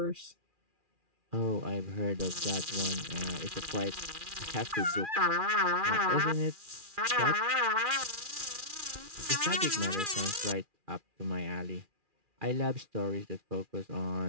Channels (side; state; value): left; late; 2.4 ms